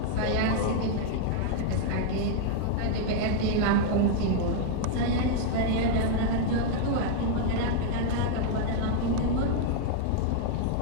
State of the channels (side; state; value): both; different; correlation -0.01